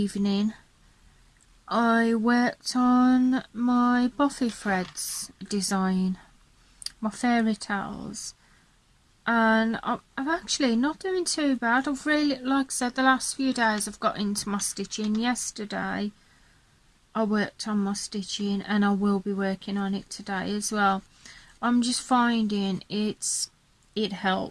I worked on my Buffy threads design, my fairy tales, and I'm actually not doing too bad. I've really, like I said, the last few days I've got into my stitching. Yesterday I worked on my stitching, and I will be working on it today as well. I'm just finding it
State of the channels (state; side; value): identical; both; correlation 1.00